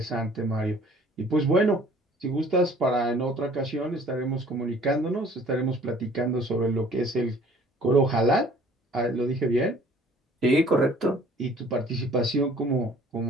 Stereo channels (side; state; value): both; normal; correlation 0.53